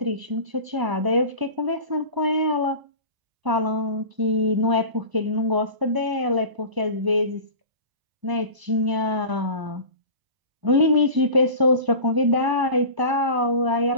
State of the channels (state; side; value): late; left; 1.0 ms